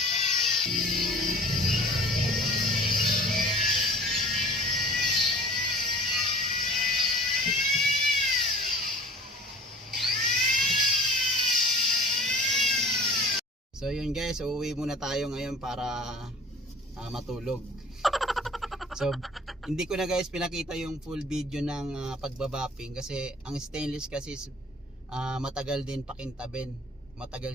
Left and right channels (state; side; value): normal; both; correlation 0.45